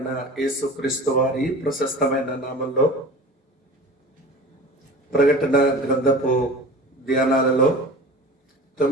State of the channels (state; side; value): normal; both; correlation 0.38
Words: యేసుక్రీస్తు వారి ప్రశస్తమైన నామంలో ప్రకటన గ్రంథపు ధ్యానాలలో